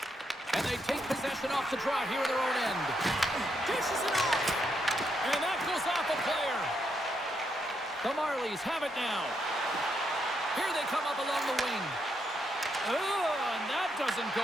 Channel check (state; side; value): normal; both; correlation 0.79